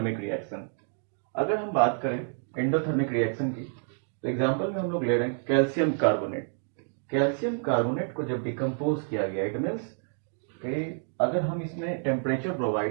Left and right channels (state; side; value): silent; left; 59 dB below the other